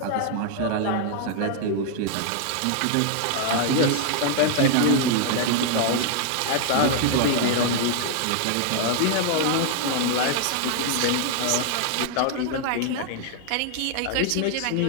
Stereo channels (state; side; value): different; both; correlation 0.00